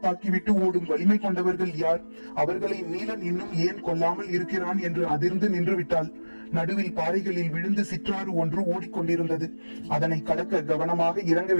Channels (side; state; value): both; inverted; correlation -1.00